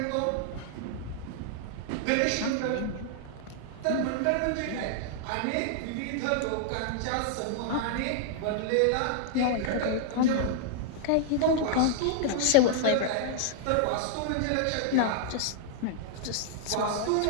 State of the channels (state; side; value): different; both; correlation -0.01